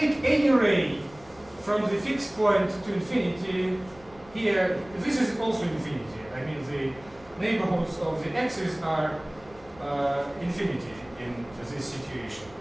any ray from the fixed point to infinity, here, this is also infinity. I mean, the neighborhoods of the axis are infinity in this situation.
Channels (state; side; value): noise; left; rumble, 24 dB below the sound